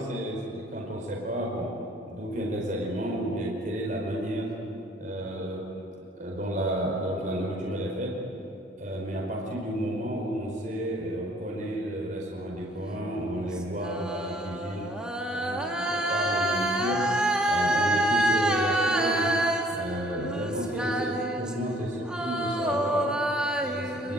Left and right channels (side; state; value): both; normal; correlation 0.58